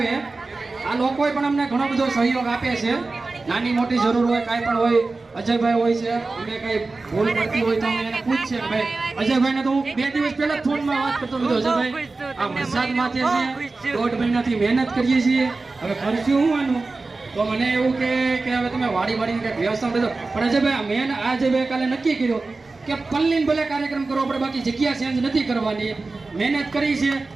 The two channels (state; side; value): quieter; left; 3.6 dB